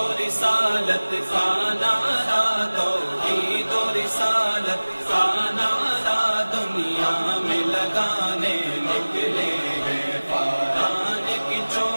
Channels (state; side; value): inverted; both; correlation -1.00